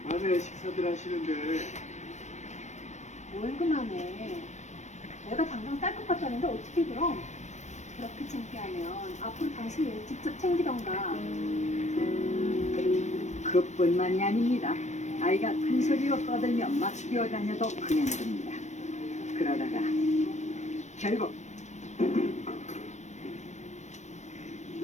밤에 식사들 하시는데 뭘 그만해. 내가 당장 쌀 것 같다는데 어떻게 그럼? 그렇게 창피하면 앞으로 당신이 일 직접 챙기던가. 그뿐만이 아닙니다. 아이가 큰 소리로 떠들며 막 뛰어다녀도 그냥 됩니다. 그러다가 결국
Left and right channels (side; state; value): right; late; 0.34 ms